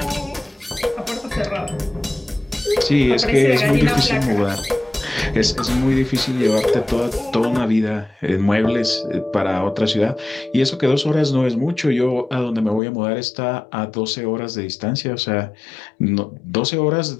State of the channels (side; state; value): right; drops out; at 12.8 s